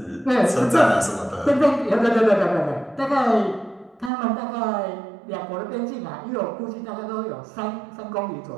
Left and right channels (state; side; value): drops out; left; at 4.1 s